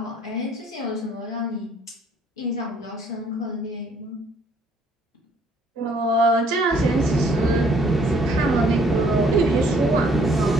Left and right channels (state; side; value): normal; both; correlation 0.62